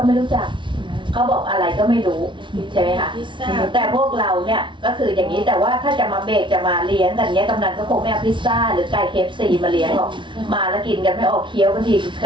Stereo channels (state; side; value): late; left; 0.24 ms